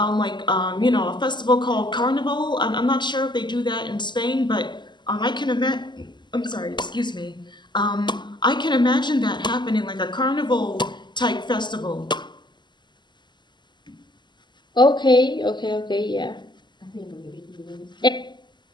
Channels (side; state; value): right; late; 0.21 ms